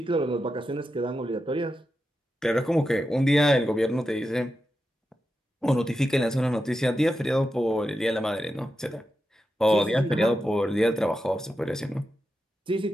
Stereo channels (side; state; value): both; normal; correlation 0.89